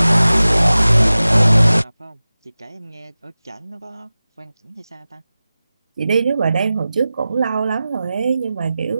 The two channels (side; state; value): both; inverted; correlation -0.96